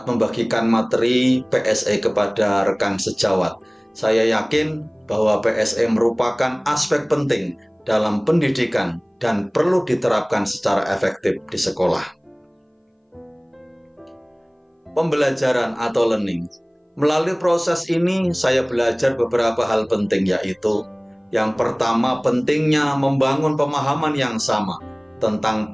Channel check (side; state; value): both; identical; correlation 1.00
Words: membagikan materi PSE kepada rekan sejawat. Saya yakin bahwa PSE merupakan aspek penting dalam pendidikan dan perlu diterapkan secara efektif di sekolah. Pembelajaran atau learning. Melalui proses ini, saya belajar beberapa hal penting, yaitu yang pertama, pentingnya membangun pemahaman yang sama tentang